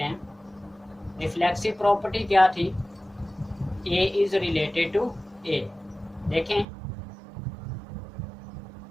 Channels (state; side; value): drops out; left; at 6.7 s